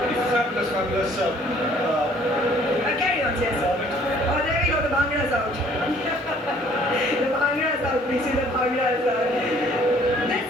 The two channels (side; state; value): both; normal; correlation 0.58